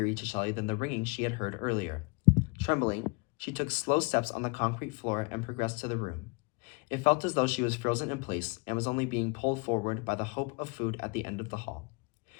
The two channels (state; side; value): quieter; right; 29.7 dB